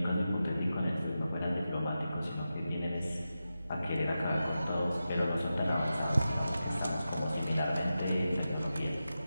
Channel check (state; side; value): inverted; both; correlation -0.91